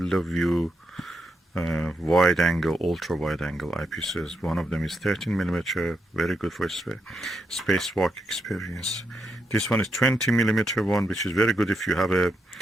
of view wide angle, ultra wide angle eyepieces. One of them is 13mm, very good for spacewalk experience. This one is 20mm one, which is very good if you have a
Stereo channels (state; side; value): normal; both; correlation 0.82